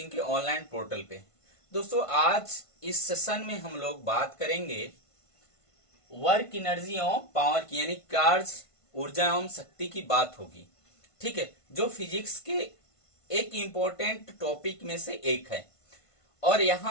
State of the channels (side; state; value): right; late; 1.5 ms